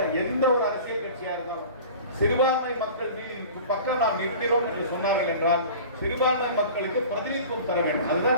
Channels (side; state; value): both; inverted; correlation -0.40